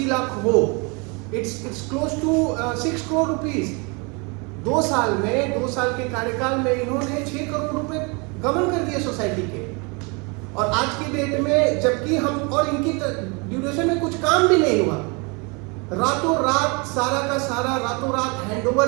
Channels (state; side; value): quieter; left; 30.8 dB